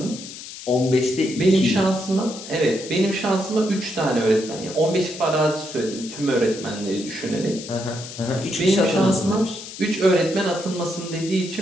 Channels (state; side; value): noise; left; hiss, 12 dB below the sound